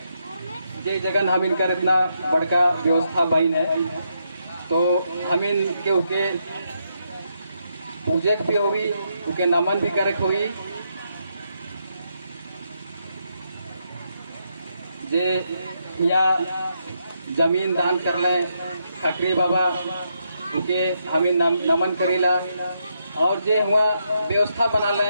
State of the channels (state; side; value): inverted; both; correlation -0.79